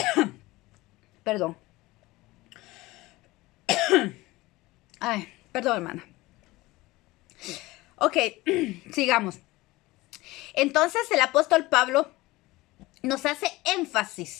perdón, ay, perdón hermana. Ok, sigamos. Entonces el apóstol Pablo nos hace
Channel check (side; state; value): right; quieter; 19.9 dB